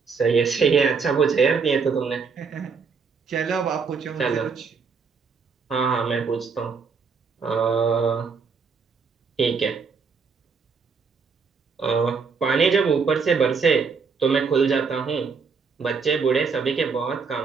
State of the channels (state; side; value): quieter; left; 5.3 dB